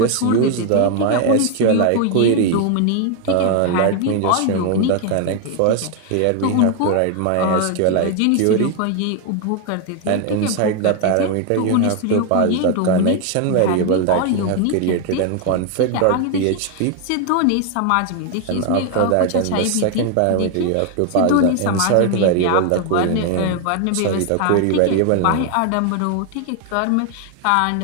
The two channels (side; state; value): both; different; correlation 0.01